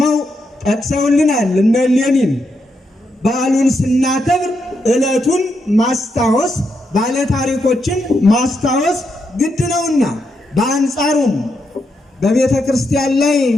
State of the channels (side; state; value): both; normal; correlation 0.82